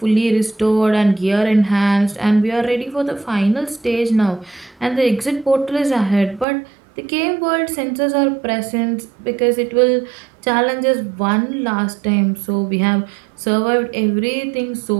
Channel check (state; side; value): drops out; left; at 6.5 s